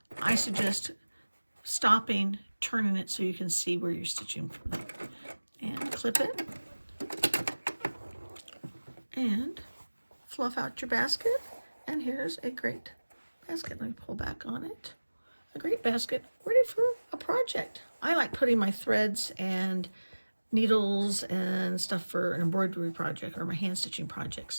I suggest stopping, turning it so you can see where you're stitching from. And clip it. And fluff out your basket. And here's a great basket. Let me pull back on it. A great basket ready for a project. I like putting my threads and needles and stuff for an embroidery project or my hand stitching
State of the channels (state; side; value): inverted; both; correlation -1.00